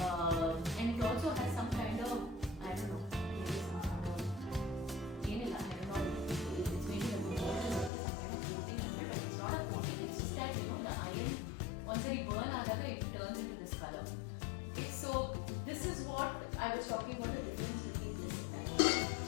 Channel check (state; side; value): drops out; right; at 7.9 s